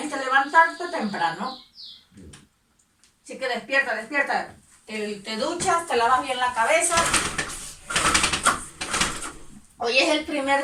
que levantarte temprano. Así que despierta, despierta. Te duchas, te lavas bien la cabeza. Hoy es el primer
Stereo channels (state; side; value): identical; both; correlation 1.00